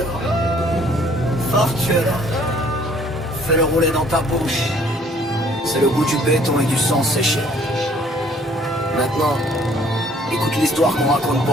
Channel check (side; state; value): both; normal; correlation 0.59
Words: Fortuna, fais-le rouler dans ta bouche. C'est le goût du béton et du sang séché. Maintenant, écoute l'histoire qu'on raconte pas